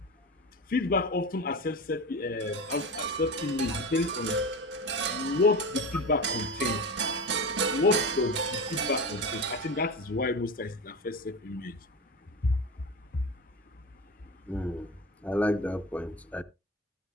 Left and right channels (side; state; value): both; normal; correlation 0.25